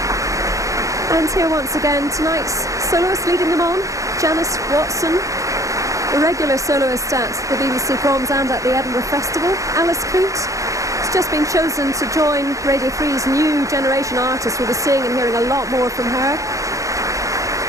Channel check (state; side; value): late; left; 0.16 ms